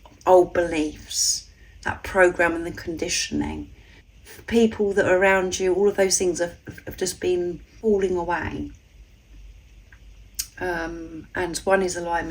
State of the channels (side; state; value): both; identical; correlation 1.00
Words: Old beliefs, that program and the conditioning, people that are around you, all of those things have just been falling away. And 1 is